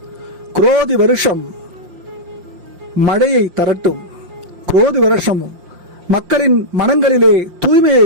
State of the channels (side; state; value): left; late; 5.7 ms